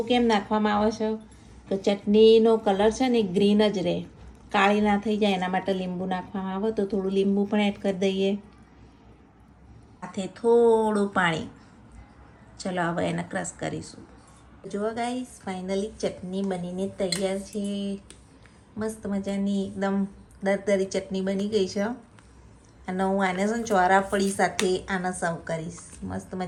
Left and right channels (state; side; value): identical; both; correlation 1.00